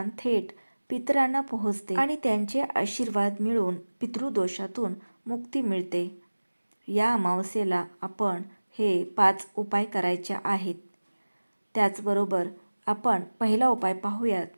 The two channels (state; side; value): inverted; both; correlation -1.00